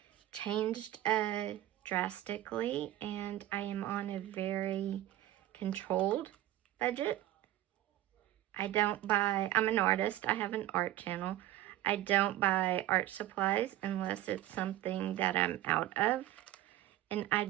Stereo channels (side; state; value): left; quieter; 14.2 dB